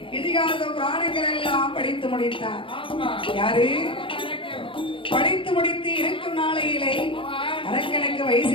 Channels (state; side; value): late; right; 0.25 ms